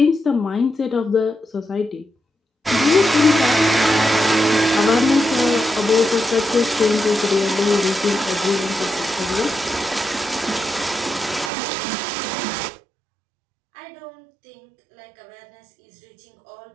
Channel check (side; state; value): left; drops out; at 11.5 s